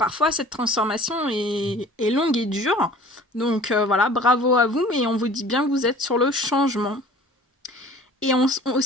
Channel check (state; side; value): normal; both; correlation 0.47